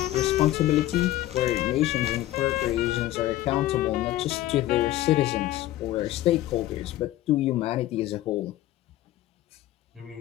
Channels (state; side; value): quieter; right; 15.0 dB